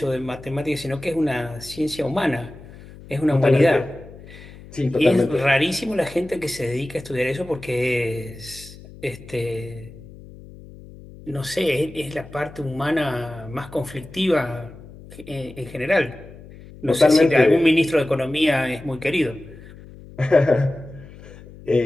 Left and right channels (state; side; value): noise; left; hum, 18 dB below the sound